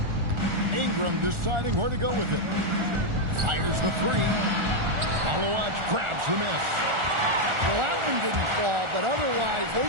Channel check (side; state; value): left; late; 1.4 ms